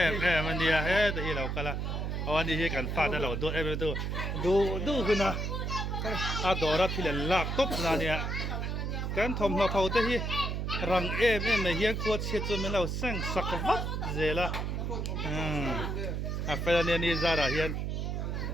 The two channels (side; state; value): right; noise; hum, 2 dB below the sound